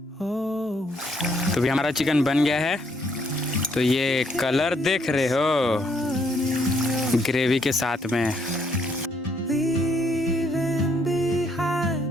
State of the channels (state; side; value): normal; both; correlation 0.70